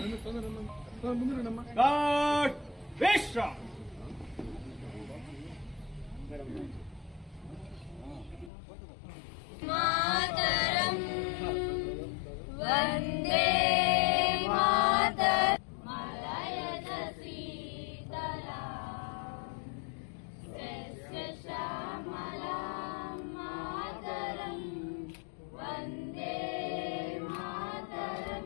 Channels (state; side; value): drops out; right; at 8.5 s